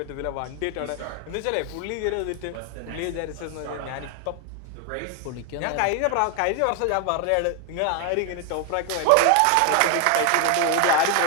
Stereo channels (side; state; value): both; different; correlation 0.01